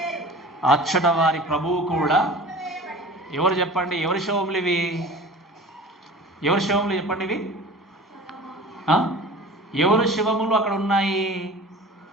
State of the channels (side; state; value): both; normal; correlation 0.40